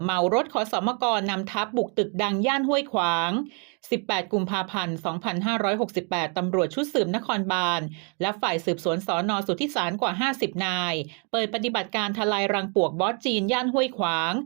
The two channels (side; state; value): left; quieter; 37.4 dB